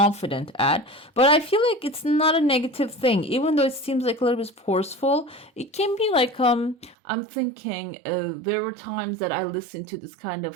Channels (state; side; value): drops out; left; at 7.0 s